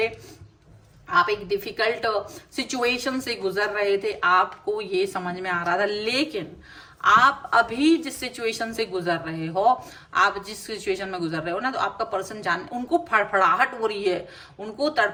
आप एक डिफिकल्ट सिचुएशन से गुजर रहे थे, आपको ये समझ में आ रहा था। लेकिन आप अभी जिस सिचुएशन से गुजर रहे हो, आप जिस सिचुएशन में गुजर रहे हो ना, तो आपका पर्सन जान उनको फड़फड़ाहट हो रही है, उनको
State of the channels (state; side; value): identical; both; correlation 1.00